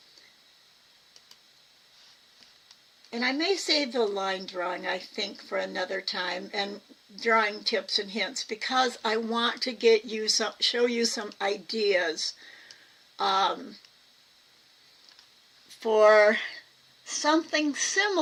And I may save the line drawing, I think, for another time, and drawing tips and hints, because I want to get you show you some ideas for something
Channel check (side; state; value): both; identical; correlation 1.00